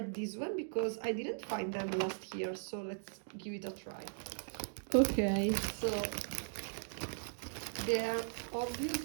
this one because I didn't find them last year. So let's give it a try. Okay, so they are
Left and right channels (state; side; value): silent; left; digital silence